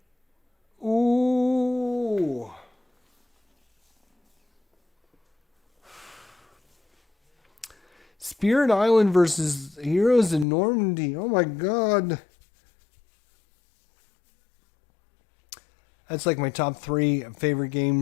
Ooh. Spirit Island versus Heroes in Normandy. Oh my god. That's like my top 3 favorite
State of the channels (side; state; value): right; drops out; at 10.5 s